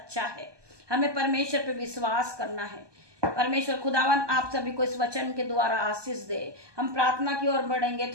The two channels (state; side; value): late; left; 1.2 ms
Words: है, हमें परमेश्वर पे विश्वास करना है। परमेश्वर खुदावन आप सभी को इस वचन के द्वारा आशीष दे। हम प्रार्थना की ओर बढ़ेंगे।